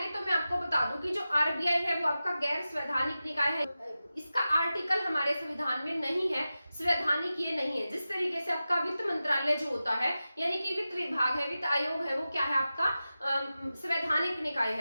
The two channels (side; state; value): both; inverted; correlation -0.94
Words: तो मैं आपको बता दूं कि जो आरबीआई है वो आपका गैर संवैधानिक निकाय है। इसका आर्टिकल हमारे संविधान में नहीं है, संवैधानिक ये नहीं है। जिस तरीके से आपका वित्त मंत्रालय जो होता है यानी कि वित्त विभाग है, वित्त आयोग है, वो क्या है आपका संवैधानिक निकाय